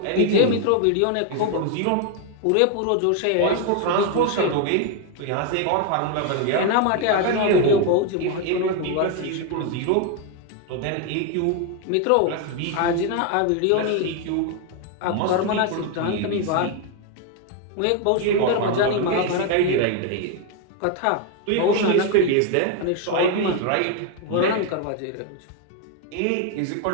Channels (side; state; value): both; different; correlation 0.01